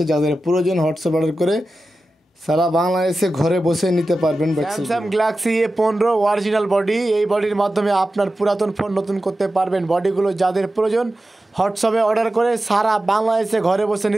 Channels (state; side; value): normal; both; correlation 0.93